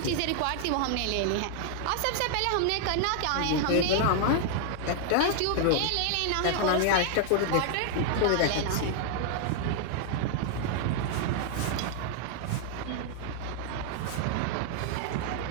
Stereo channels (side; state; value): both; different; correlation 0.00